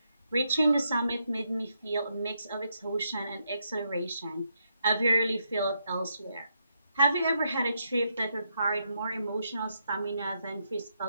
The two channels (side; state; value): both; inverted; correlation -0.80